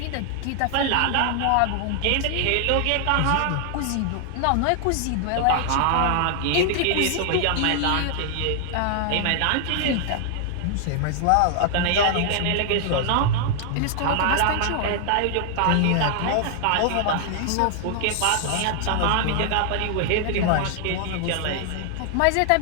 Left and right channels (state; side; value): different; both; correlation 0.00